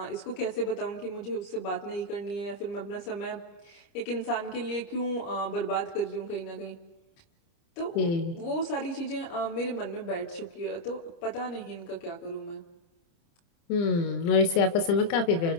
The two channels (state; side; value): late; right; 30 ms